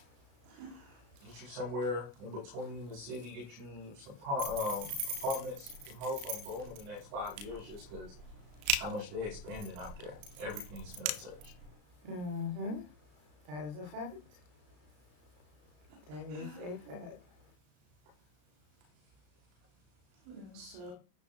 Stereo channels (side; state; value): left; late; 34 ms